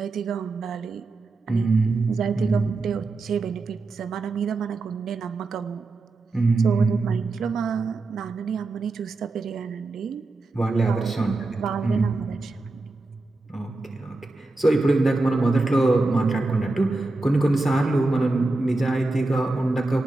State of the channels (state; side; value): quieter; left; 3.2 dB